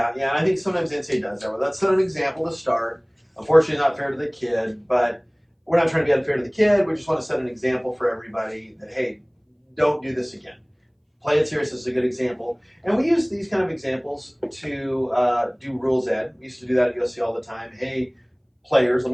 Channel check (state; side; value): identical; both; correlation 1.00